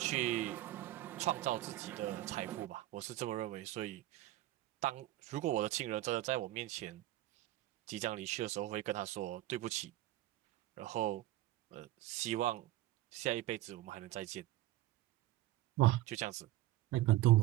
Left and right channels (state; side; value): quieter; left; 15.8 dB